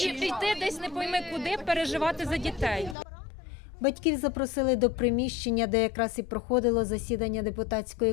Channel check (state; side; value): drops out; right; at 3.0 s